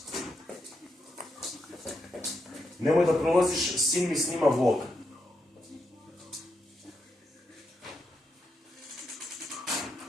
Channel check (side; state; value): both; normal; correlation 0.83